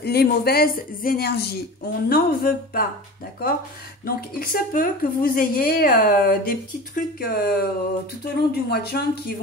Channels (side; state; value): both; normal; correlation 0.34